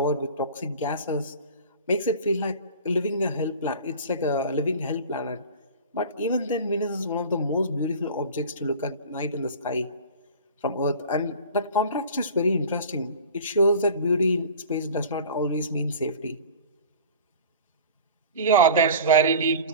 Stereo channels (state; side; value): inverted; both; correlation -0.39